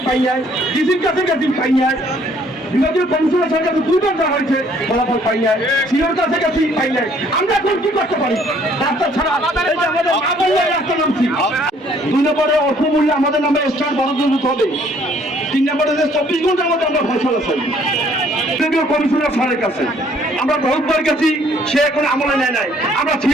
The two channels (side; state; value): both; normal; correlation 0.61